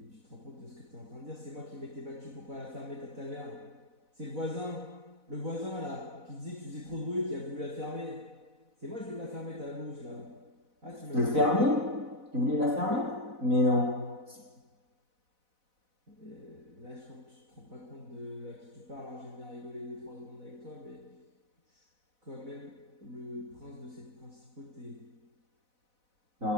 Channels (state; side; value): late; left; 4.0 ms